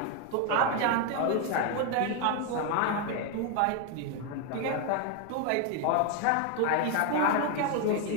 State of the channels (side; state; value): both; different; correlation 0.01